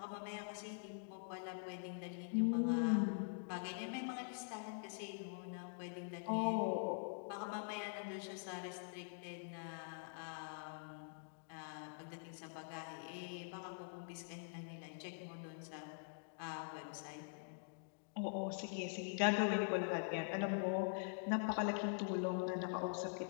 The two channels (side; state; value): right; silent; digital silence